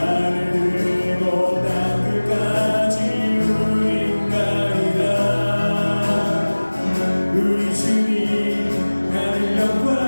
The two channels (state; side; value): inverted; both; correlation -1.00